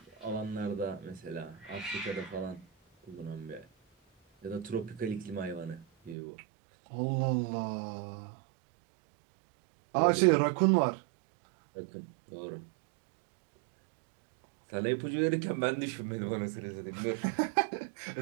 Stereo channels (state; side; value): drops out; left; at 6.2 s